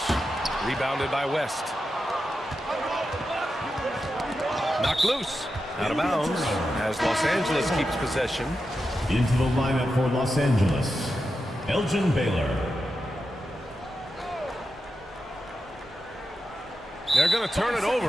Rebounded by West. Knocked loose. Out of bounds as Los Angeles keeps possession. Into the lineup for Los Angeles, Elgin Baylor. They're going to turn it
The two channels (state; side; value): normal; both; correlation 0.89